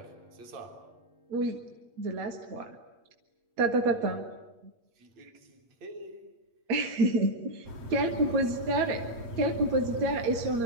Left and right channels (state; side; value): late; left; 8.5 ms